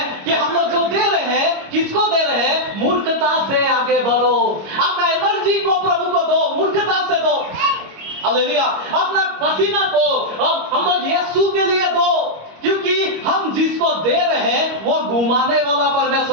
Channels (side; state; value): left; late; 25 ms